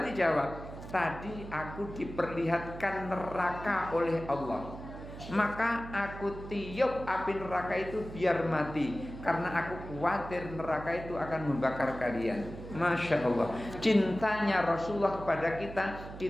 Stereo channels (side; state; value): right; noise; hum, 12 dB below the sound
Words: dijawab, tadi aku diperlihatkan neraka oleh Allah, maka aku tiup api neraka itu biar mati, karena aku khawatir neraka itu akan membakar kalian. Masya Allah, cintanya Rasulullah kepada